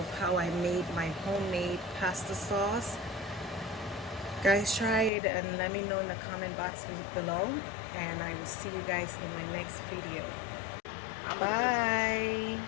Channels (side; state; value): right; drops out; at 5.1 s